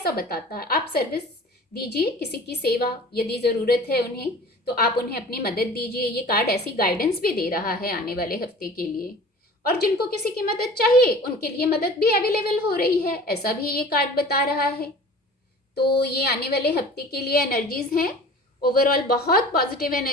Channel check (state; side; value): normal; both; correlation 0.42